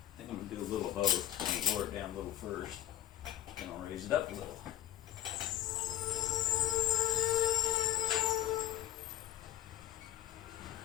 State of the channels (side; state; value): right; quieter; 13.5 dB